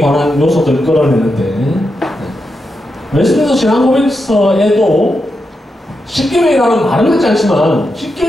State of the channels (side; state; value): both; normal; correlation 0.86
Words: 요소들을 끌어내는데 웨스트민스터 신앙고백서에도 10계명이라는 말은 하지 않지만